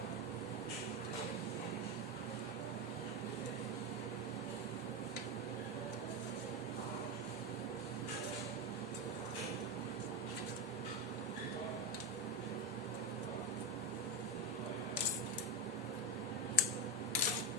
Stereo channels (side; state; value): both; normal; correlation 0.12